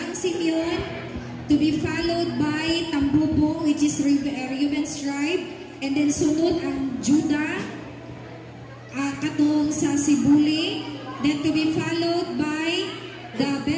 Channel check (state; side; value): identical; both; correlation 1.00